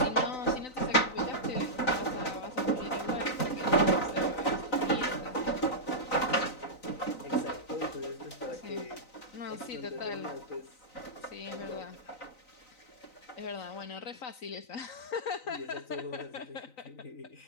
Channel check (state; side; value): late; right; 3.9 ms